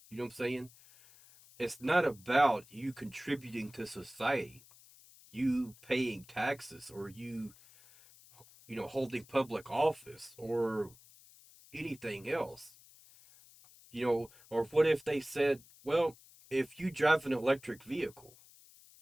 You know what I'm saying? It's not about you contributing to society, you paying taxes, or you holding public office, or anything else. Or what if they said, well, if you drive an electric vehicle,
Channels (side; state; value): left; noise; hiss, 24 dB below the sound